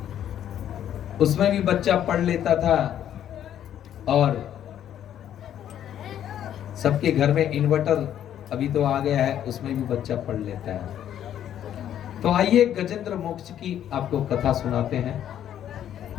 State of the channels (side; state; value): right; quieter; 10.5 dB